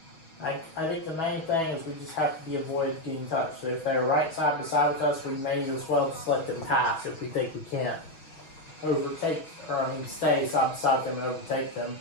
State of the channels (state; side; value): late; right; 6.2 ms